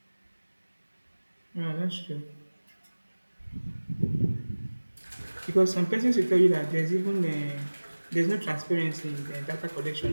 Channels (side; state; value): both; inverted; correlation -1.00